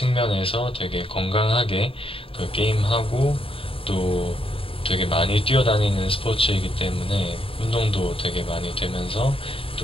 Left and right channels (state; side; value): late; right; 0.27 ms